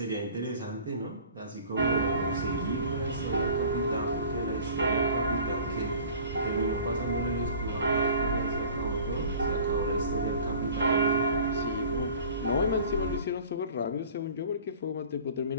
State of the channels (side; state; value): both; inverted; correlation -0.45